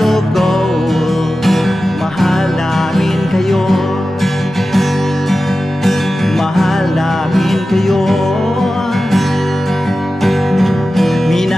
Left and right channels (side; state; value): both; normal; correlation 0.94